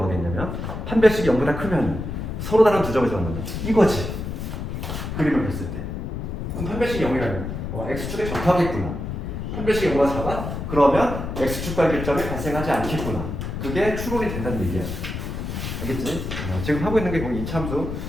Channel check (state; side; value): noise; left; rumble, 5 dB below the sound